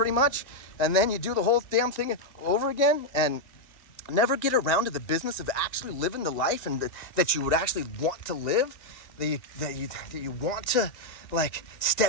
much, and then you do the whole damn thing over again and never get around to the business of actually living the life and that you would actually want to live, that you want to like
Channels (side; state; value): right; late; 2.1 ms